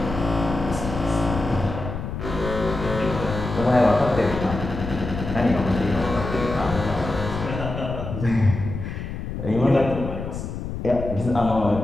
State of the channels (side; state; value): left; noise; rumble, 6 dB below the sound